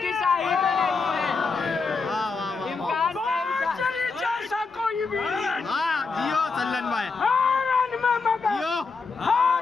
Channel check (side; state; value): right; quieter; 4.5 dB